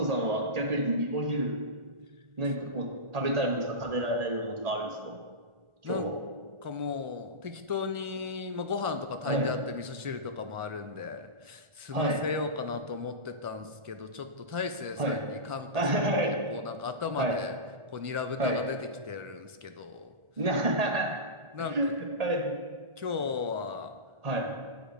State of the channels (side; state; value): left; late; 1.4 ms